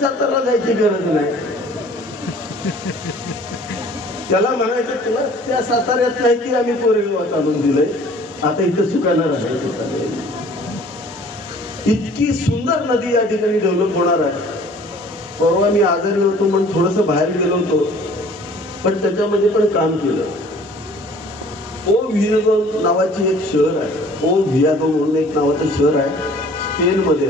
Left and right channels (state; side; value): normal; both; correlation 0.51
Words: सातारला जायची गरज नाही. त्याला म्हणायचं तुला त्या साताऱ्यात नाही की आम्ही कोरेगावात आणून दिलंय, आता इथं सुखानं राहायचं. इतकी सुंदर नदी या ठिकाणी डेव्हलप होणार आहे. परवा मी आजारी होतो म्हणून थोडंसं बाहेर गेलो होतो, पण त्याच्यामध्ये पण काम केलं. ओ व्हियादो नावाची एक शहर आहे, ओ व्हियादो म्हणून एक नावाचं शहर आहे, स्पेनमध्ये